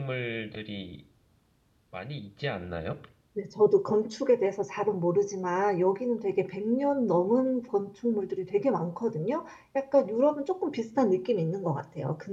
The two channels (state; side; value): identical; both; correlation 1.00